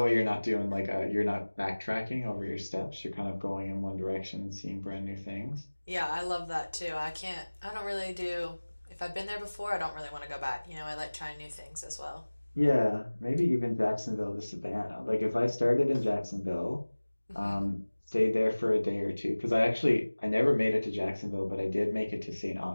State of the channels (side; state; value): both; inverted; correlation -1.00